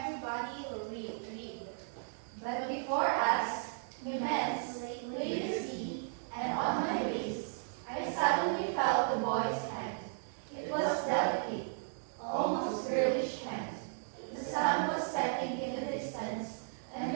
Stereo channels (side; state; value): left; silent; 54 dB below the other